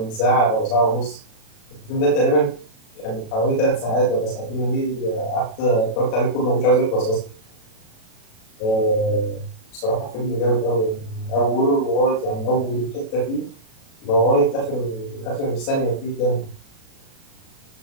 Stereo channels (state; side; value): late; right; 36 ms